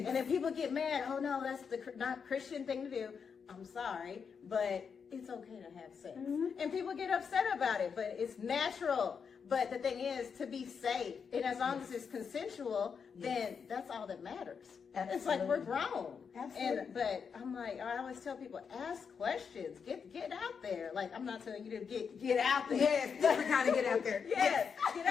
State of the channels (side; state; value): right; quieter; 6.3 dB